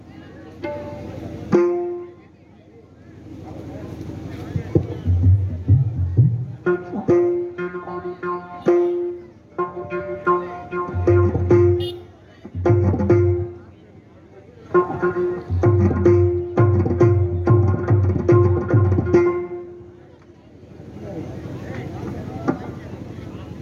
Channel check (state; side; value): identical; both; correlation 1.00